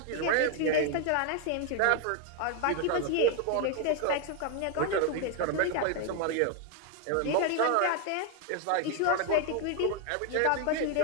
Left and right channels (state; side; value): different; both; correlation 0.01